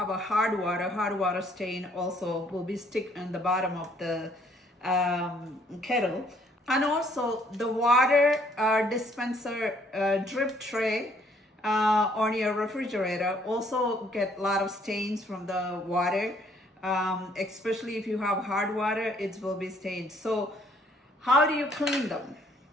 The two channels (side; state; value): both; normal; correlation 0.64